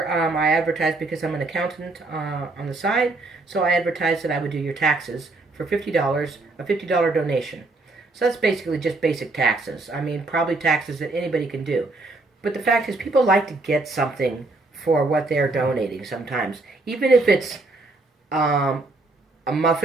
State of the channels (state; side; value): quieter; left; 3.3 dB